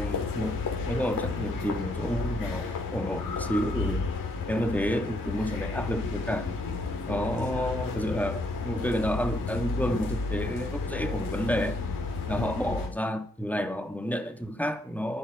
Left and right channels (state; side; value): normal; both; correlation 0.72